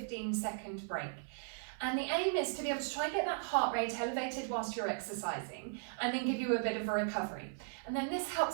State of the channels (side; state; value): left; silent; 53 dB below the other